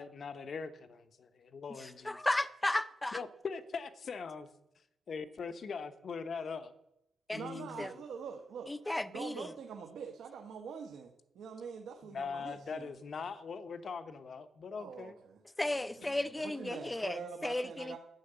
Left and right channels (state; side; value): normal; both; correlation 0.92